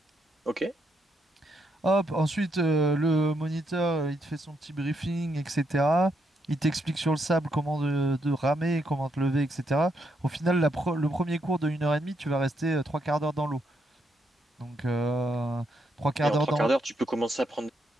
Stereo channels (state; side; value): normal; both; correlation 0.78